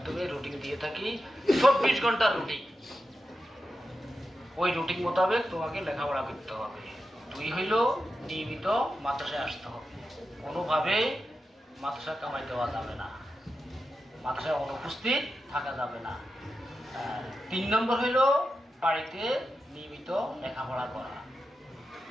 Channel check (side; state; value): both; normal; correlation 0.90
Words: রুটিন দিয়ে থাকি, 24 ঘন্টার রুটিন। ওই রুটিন মোতাবেক তোমাকে লেখাপড়া করতে হবে। দুই হইল নিয়মিত মাদ্রাসায় আসতে হবে, কোনোভাবে মাদ্রাসা কামাই দেওয়া যাবে না, মাদ্রাসায় অনুপস্থিত থাকা যাবে না। 3 নম্বর হইল বাড়িতে নিয়মিত লেখাপড়া করা।